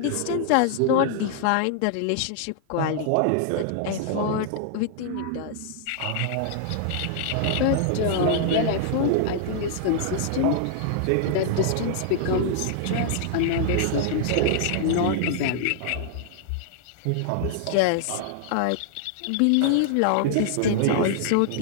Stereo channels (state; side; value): different; both; correlation -0.01